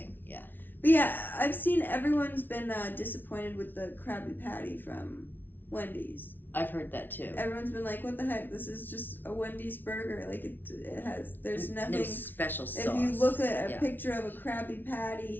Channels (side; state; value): right; late; 0.091 ms